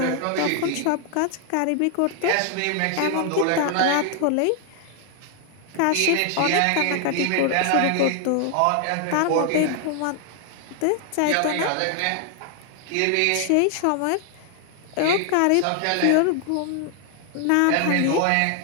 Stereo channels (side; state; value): both; different; correlation 0.00